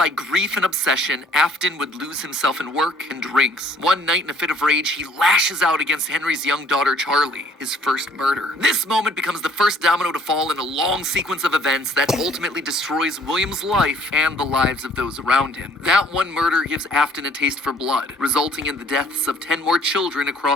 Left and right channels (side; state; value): both; normal; correlation 0.58